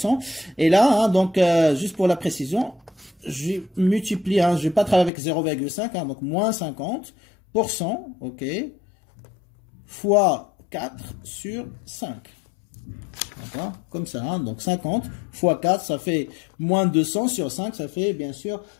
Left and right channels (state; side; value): drops out; right; at 5.1 s